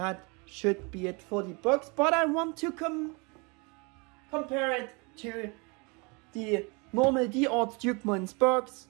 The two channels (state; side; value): quieter; left; 30.0 dB